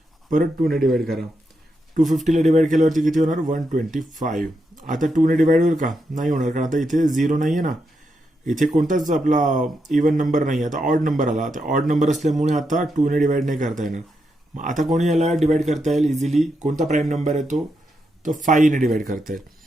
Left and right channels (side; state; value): both; normal; correlation 0.83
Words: परत 2 ने डिवाइड करा. 250ला डिवाइड केल्यावरती किती होणार 125. आता 2 ने डिवाइड होईल का, नाही होणार, कारण आता इथे 0 नाहीये ना, इथे कोणताच आपला इवन नंबर नाही, आता ऑड नंबर आला. आता ऑड नंबर असल्यामुळे आता 2 ने डिवाइड नाही करता येणार. मग आता कोणी याला डिवाइड करता येईल इझिली, कोणता प्राईम नंबर आहे तो 5 ने डिवाइड करता येईल.